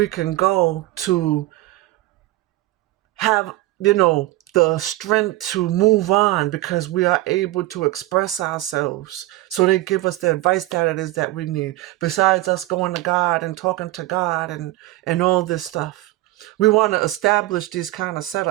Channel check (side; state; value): left; quieter; 17.5 dB